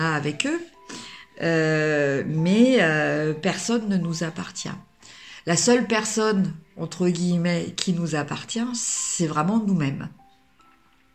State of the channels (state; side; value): identical; both; correlation 1.00